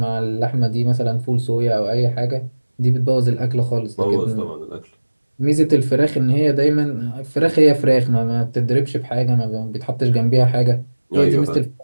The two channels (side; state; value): both; inverted; correlation -1.00